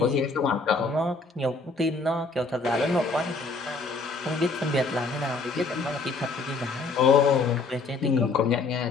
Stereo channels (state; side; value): quieter; right; 3.9 dB